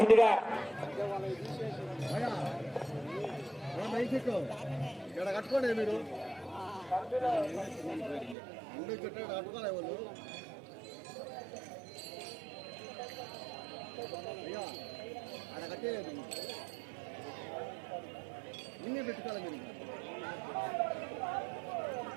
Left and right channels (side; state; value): left; drops out; at 8.3 s